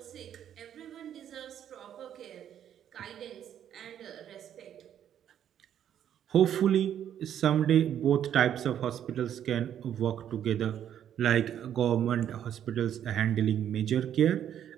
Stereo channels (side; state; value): left; quieter; 10.0 dB